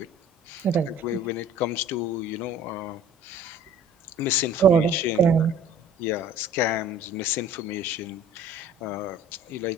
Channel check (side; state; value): both; normal; correlation 0.48